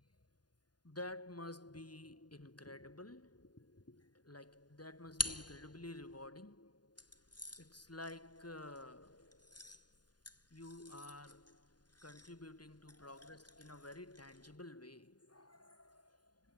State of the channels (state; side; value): late; right; 0.70 ms